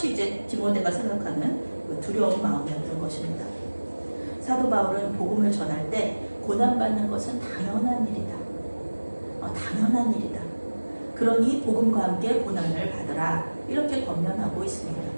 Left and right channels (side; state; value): both; inverted; correlation -1.00